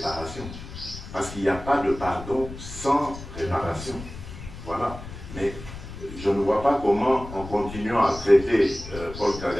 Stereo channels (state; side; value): noise; left; rumble, 12 dB below the sound